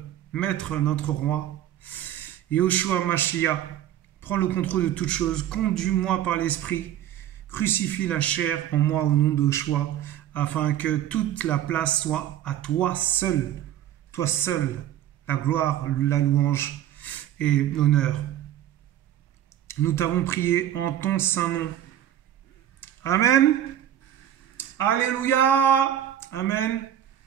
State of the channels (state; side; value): quieter; left; 11.4 dB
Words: maître, notre roi, Yahushua Mashiach. Prends le contrôle de toutes choses, conduis-moi par l'Esprit, crucifie la chair en moi au nom de Yahushua, afin que toute la place soit à toi seul, la gloire, la louange et l'honneur. Nous t'avons prié en ton saint nom. Amen. Alléluia. Amen.